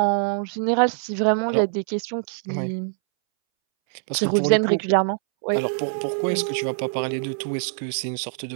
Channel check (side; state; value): left; silent; 63 dB below the other